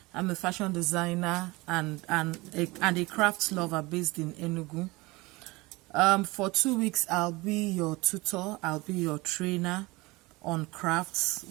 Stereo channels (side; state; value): left; quieter; 22.7 dB